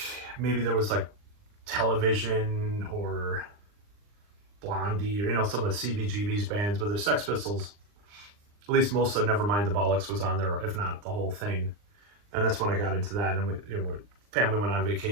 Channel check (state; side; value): late; left; 39 ms